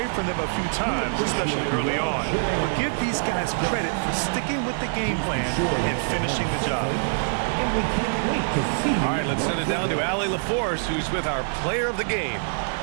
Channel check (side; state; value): left; silent; digital silence